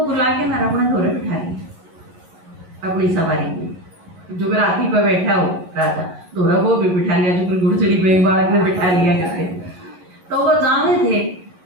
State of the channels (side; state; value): left; late; 11 ms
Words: बुला के ना अपने घोड़े बिठा लिया अपनी सवारी में, जो हाथी पर बैठा हो राजा दोरा वो भी बिठा लिया, जो घुड़चड़ी पे बालक ने बिठा लिया करते। तो वो जावे थे,